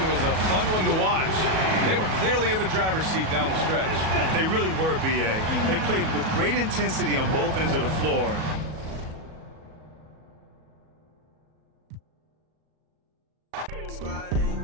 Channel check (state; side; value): late; left; 37 ms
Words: was a fun one to watch. They were clearly in the driver's seat down the stretch. They really were, B.A. They played with great intensity on both ends of the floor. Squad ain't